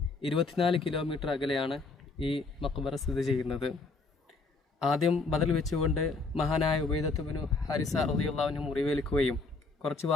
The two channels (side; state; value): right; quieter; 3.8 dB